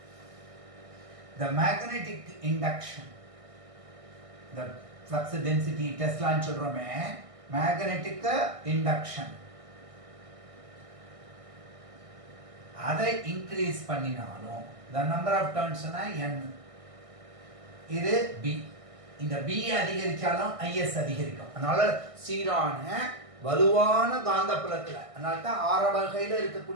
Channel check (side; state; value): left; late; 1.6 ms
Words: the magnetic induction, the flux density டெஸ்லான்னு சொல்றோமே, magnetic induction அதை இன்க்ரீஸ் பண்ணினாலும் the number of turns n, இது b. இந்த b அதிகரிச்சாலும் is அதிகரிக்கும். அதனால சீரான வலுவான காந்தப்புலத்துல, அதனால தான் ஆற வகையில்